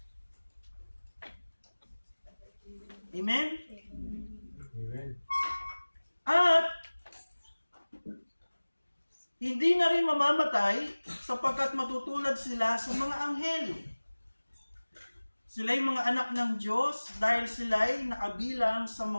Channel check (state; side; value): inverted; both; correlation -1.00